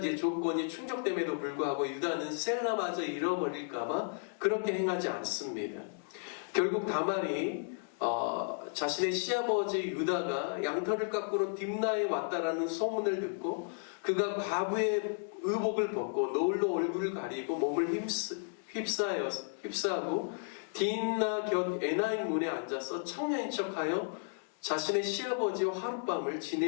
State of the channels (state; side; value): silent; right; digital silence